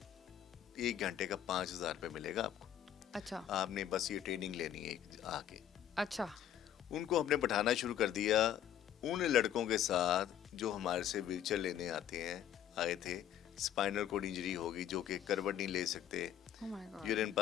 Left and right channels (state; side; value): quieter; right; 10.5 dB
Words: ایک گھنٹے کا 5,000 روپے ملے گا آپ کو. اچھا. آپ نے بس یہ ٹریننگ لینی ہے آ کے. اچھا. ان کو ہم نے بٹھانا شروع کر دیا ان لڑکوں کے ساتھ جو ہمارے سے ویل چیئر لینے آئے تھے. اسپائنل کوڈ انجری ہوگی, جو کہ کروٹ نہیں لے سکتے, یورین